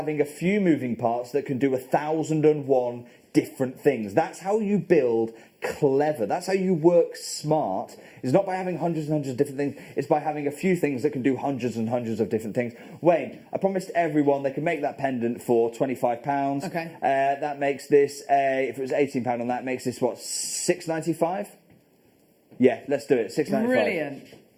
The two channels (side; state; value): both; identical; correlation 1.00